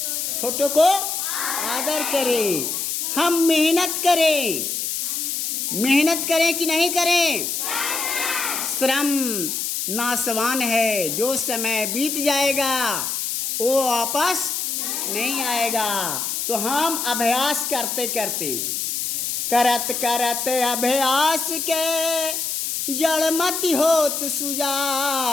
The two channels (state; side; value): noise; left; hiss, 2 dB below the sound